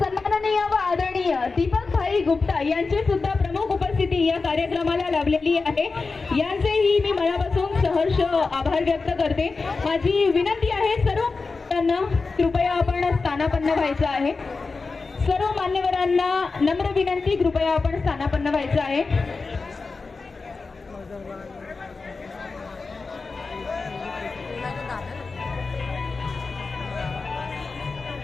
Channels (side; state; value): right; quieter; 4.2 dB